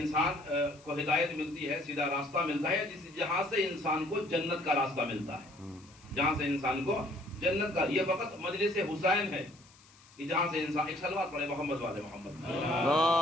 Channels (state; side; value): noise; left; hiss, 26 dB below the sound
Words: کو ہدایت ملتی ہے، سیدھا راستہ ملتا ہے، جہاں سے انسان کو جنت کا راستہ ملتا ہے، جہاں سے انسان کو جنت کا. یہ فقط مجلس حسین ہے کہ جہاں سے انسان. ایک صلوات پڑھے محمد والے محمد.